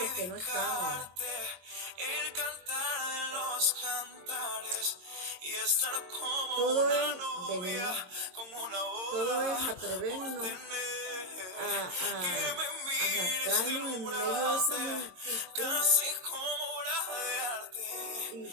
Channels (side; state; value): left; late; 22 ms